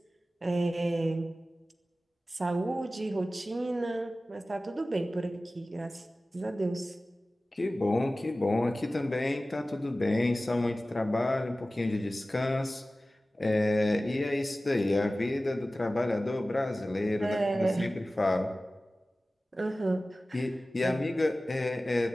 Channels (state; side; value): normal; both; correlation 0.96